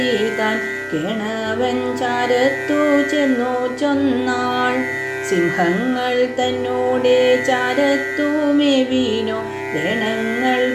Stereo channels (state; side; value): identical; both; correlation 1.00